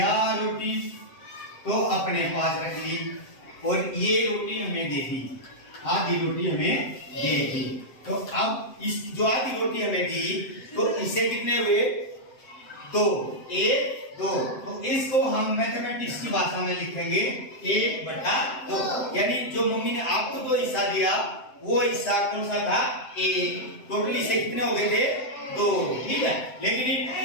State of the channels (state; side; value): late; right; 7.8 ms